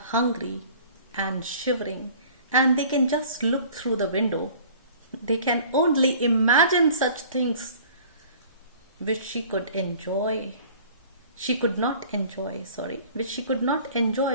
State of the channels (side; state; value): both; inverted; correlation -0.48